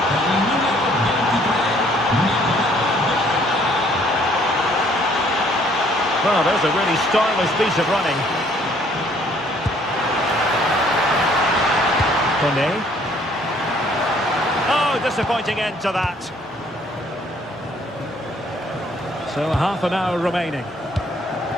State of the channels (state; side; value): normal; both; correlation 0.62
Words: Well, there's a really stylish piece of running. Kone. Oh, disappointing end to that. So half an hour remaining.